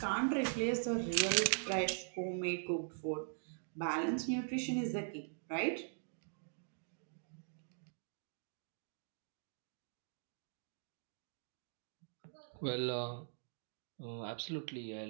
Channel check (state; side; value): silent; left; digital silence